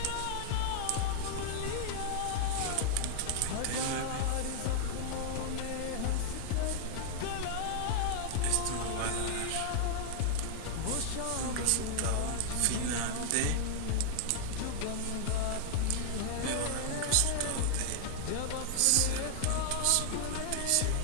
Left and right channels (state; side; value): different; both; correlation 0.00